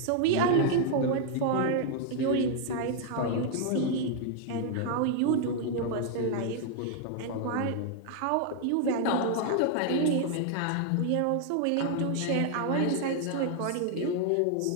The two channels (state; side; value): different; both; correlation 0.00